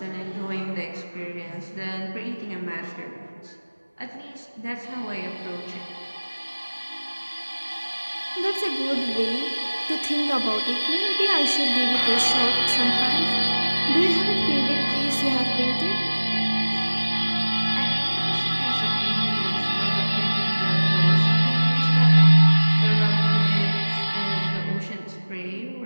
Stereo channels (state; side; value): inverted; both; correlation -1.00